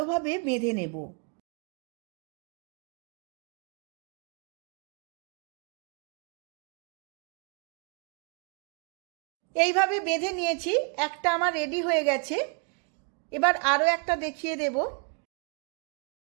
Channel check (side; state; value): left; quieter; 35.9 dB